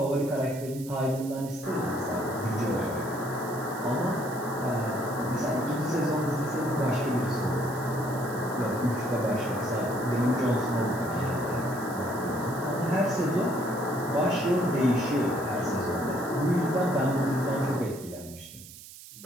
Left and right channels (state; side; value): noise; right; hiss, 16 dB below the sound